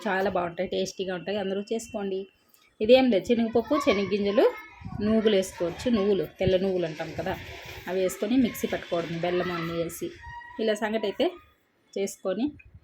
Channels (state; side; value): identical; both; correlation 1.00